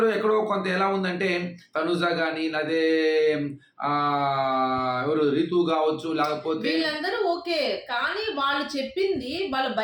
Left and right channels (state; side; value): identical; both; correlation 1.00